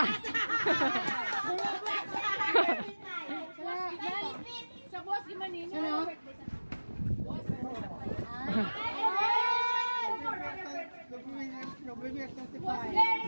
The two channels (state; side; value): inverted; both; correlation -1.00